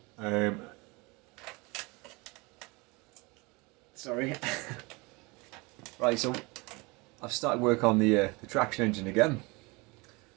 Um, Sorry. Right, so I've started work on the traction engine again.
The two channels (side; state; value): left; quieter; 26.2 dB